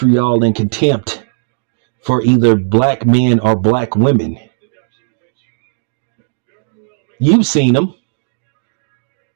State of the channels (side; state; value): left; silent; digital silence